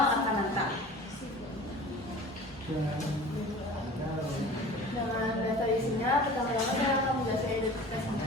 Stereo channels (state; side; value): normal; both; correlation 0.41